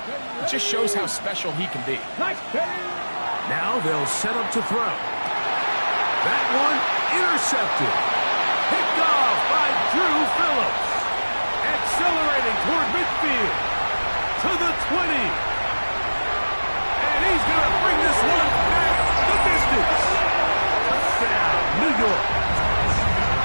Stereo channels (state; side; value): inverted; both; correlation -1.00